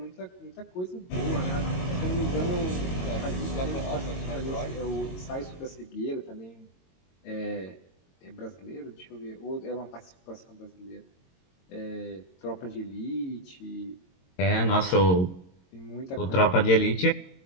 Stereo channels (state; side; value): late; right; 22 ms